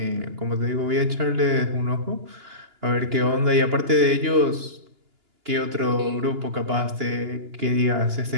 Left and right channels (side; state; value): left; late; 2.9 ms